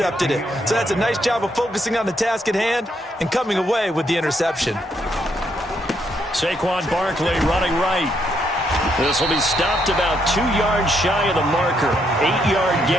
it. So that's a nice job of focusing on the task at hand and coming away with the interception. Saquon Barkley running right. This will be stopped about 2 yards shy of the marker. 8-yard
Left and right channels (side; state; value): both; normal; correlation 0.75